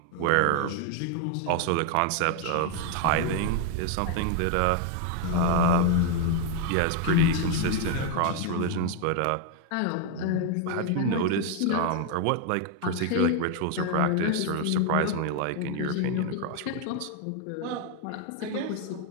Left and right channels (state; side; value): different; both; correlation 0.01